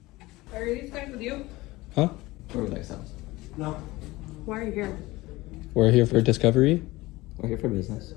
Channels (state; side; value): quieter; right; 20.0 dB